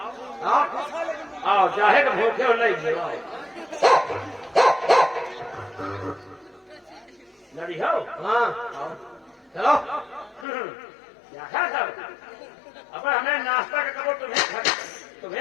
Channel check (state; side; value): drops out; right; at 10.5 s